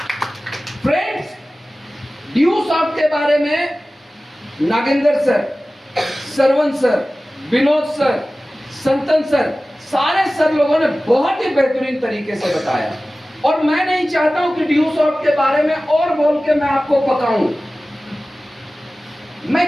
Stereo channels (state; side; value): normal; both; correlation 0.96